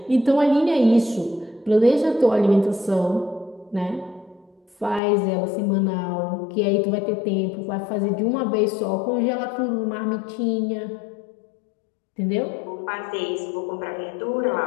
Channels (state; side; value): drops out; right; at 5.0 s